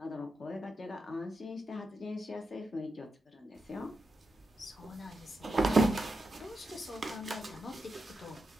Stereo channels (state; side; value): normal; both; correlation 0.87